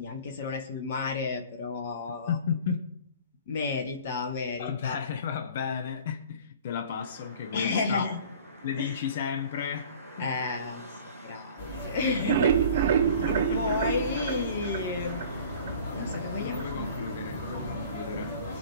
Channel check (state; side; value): inverted; both; correlation -0.46